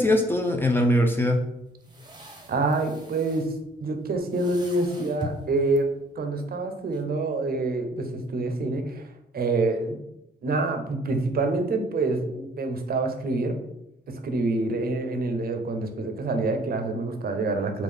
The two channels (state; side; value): normal; both; correlation 0.58